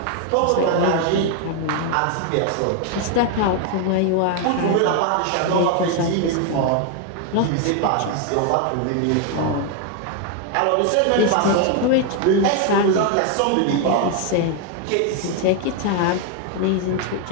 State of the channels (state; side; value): different; both; correlation 0.01